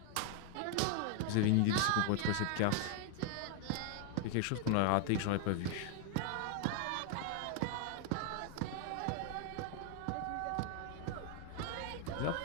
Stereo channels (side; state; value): both; different; correlation 0.01